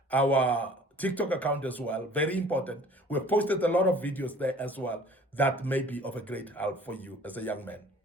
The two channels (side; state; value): both; normal; correlation 0.49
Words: our TikTok account as well. Very important. We've posted a lot of videos there as well that may be of a great help for you as a young man.